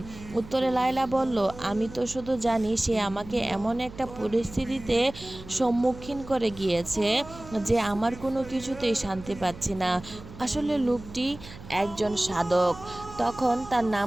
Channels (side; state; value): right; noise; hum, 16 dB below the sound